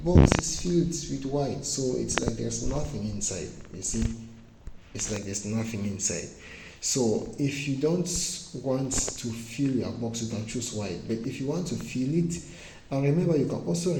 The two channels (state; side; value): identical; both; correlation 1.00